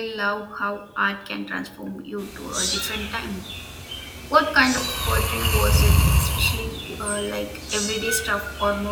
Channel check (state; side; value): identical; both; correlation 1.00